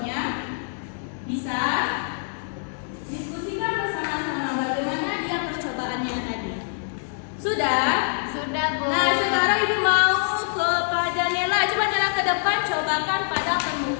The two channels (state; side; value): silent; right; digital silence